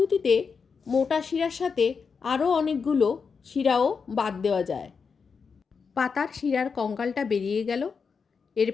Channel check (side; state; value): right; quieter; 5.6 dB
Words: মোটা শিরার সাথে আরও অনেকগুলো শিরাও বাদ দেওয়া যায়। পাতার শিরার কঙ্কালটা বেরিয়ে গেল।